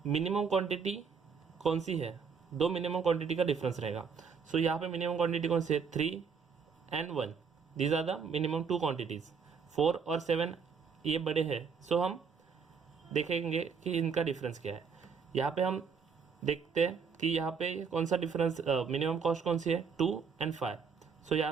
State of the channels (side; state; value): left; quieter; 5.9 dB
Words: मिनिमम क्वांटिटी कौन सी है, दो मिनिमम क्वांटिटी का डिफरेंस रहेगा। सो यहाँ पे मिनिमम क्वांटिटी कौन सी है, 3 and 1, these are the minimum 2 quantities. 4 और 7 ये बड़े हैं, सो हम देखेंगे कि इनका डिफरेंस क्या है। यहाँ पे हम देखते हैं कि यहाँ पे कौन सा डिफरेंस, मिनिमम कॉस्ट कौन सी है, 2 and 5। सो